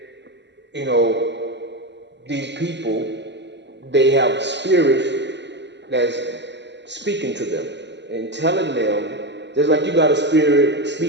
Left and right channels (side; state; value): left; late; 0.51 ms